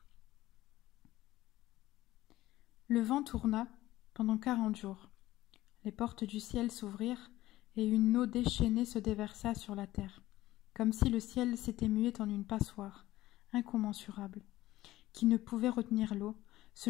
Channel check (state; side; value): quieter; right; 16.1 dB